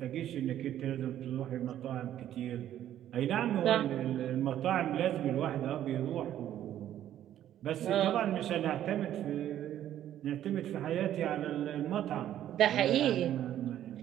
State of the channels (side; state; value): left; quieter; 11.6 dB